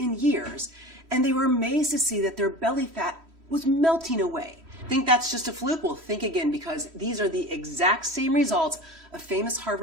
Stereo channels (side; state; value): left; late; 3.1 ms